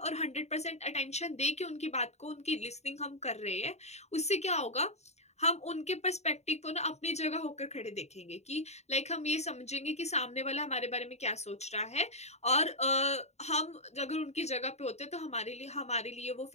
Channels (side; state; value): right; late; 0.32 ms